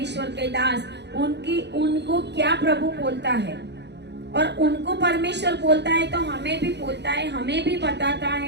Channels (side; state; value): left; late; 0.50 ms